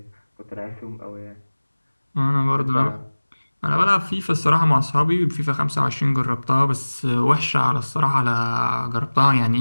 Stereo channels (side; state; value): both; inverted; correlation -1.00